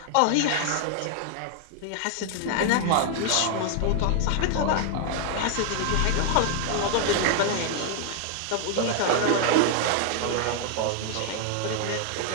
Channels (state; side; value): different; both; correlation 0.00